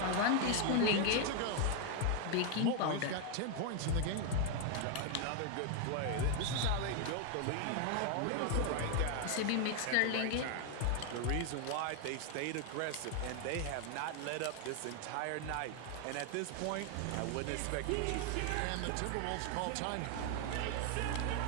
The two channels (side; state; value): both; different; correlation 0.01